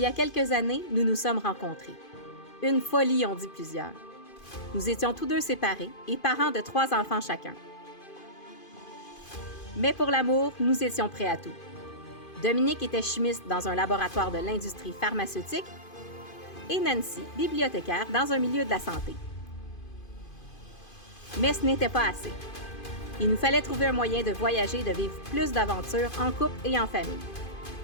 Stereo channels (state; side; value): late; right; 2.5 ms